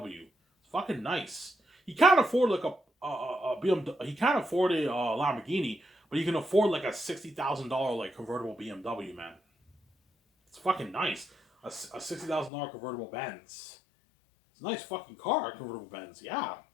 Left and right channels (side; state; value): right; drops out; at 12.5 s